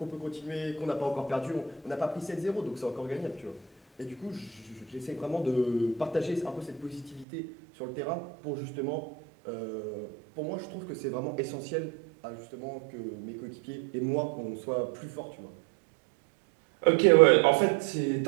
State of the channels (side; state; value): left; drops out; at 7.2 s